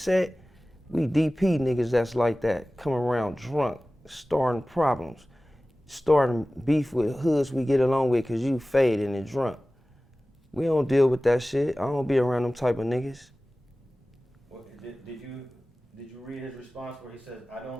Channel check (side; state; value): both; normal; correlation 0.97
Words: we DP niggas that's like that, come around drunk, starting problems, starting beef with hoods we get along with, cause you faded and drunk. We don't deal with that shit. I don't be around them type of niggas. Well, did you read his response where he says, "I